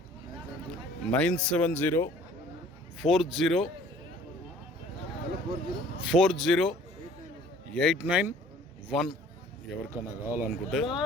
9704040891. ఎవరికైనా కావాలనుకుంటే.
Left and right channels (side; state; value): both; normal; correlation 0.53